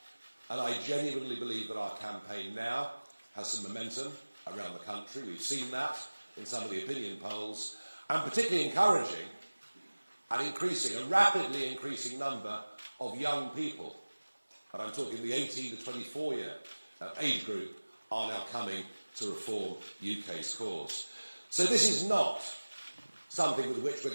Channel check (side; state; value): both; inverted; correlation -1.00